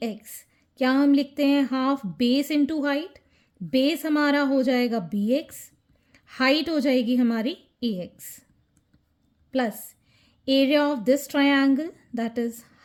X क्या हम लिखते हैं? Half base into height. Base हमारा हो जाएगा बी एक्स, हाइट हो जाएगी हमारी A X, plus area of this triangle that is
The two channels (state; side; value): identical; both; correlation 1.00